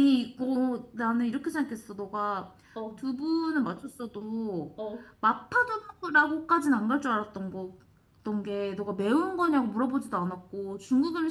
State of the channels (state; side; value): identical; both; correlation 1.00